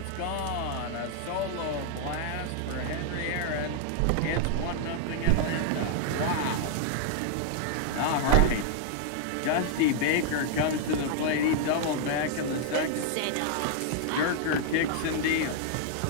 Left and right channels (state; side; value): different; both; correlation 0.00